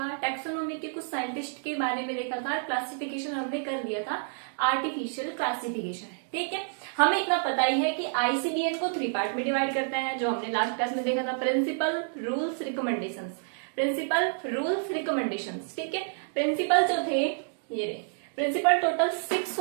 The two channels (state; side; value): silent; left; digital silence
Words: टैक्सोनॉमी के कुछ साइंटिस्ट के बारे में देखा था। क्लासिफिकेशन हमने कर दिया था, आर्टिफिशियल क्लासिफिकेशन। ठीक है, हमें इतना पता ही है कि आईसीडीएन को 3 पार्ट में डिवाइड करता है, जो हमने लास्ट क्लास में देखा था। Principle, rules, recommendations. Principle, rules, recommendations. ठीक है, प्रिंसिपल जो थे ये रहे। प्रिंसिपल टोटल 6